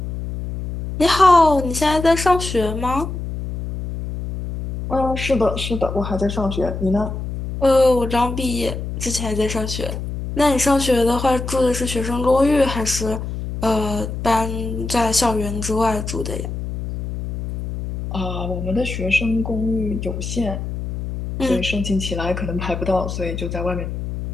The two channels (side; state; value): left; noise; hum, 6 dB below the sound